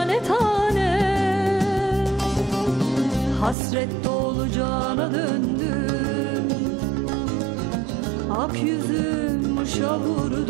tane. Hasret dolu cana döndüm, ak yüzüm mışa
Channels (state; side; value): drops out; left; at 3.6 s